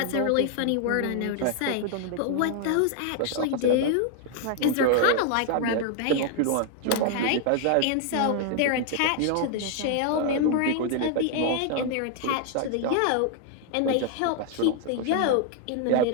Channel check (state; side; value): different; both; correlation 0.00